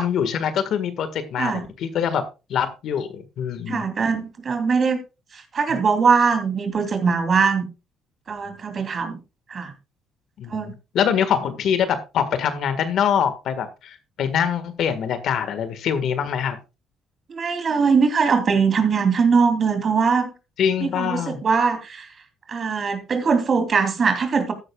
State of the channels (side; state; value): both; normal; correlation 0.73